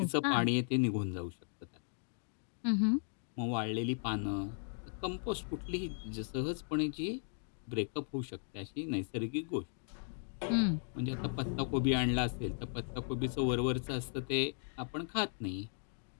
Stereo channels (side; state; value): right; silent; digital silence